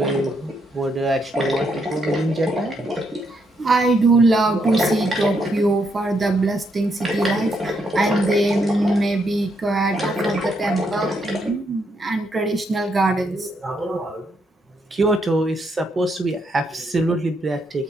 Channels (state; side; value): normal; both; correlation 0.77